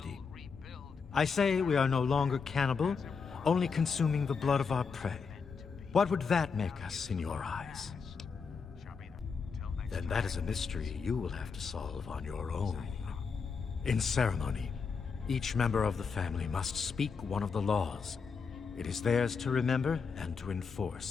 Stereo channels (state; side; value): quieter; right; 5.4 dB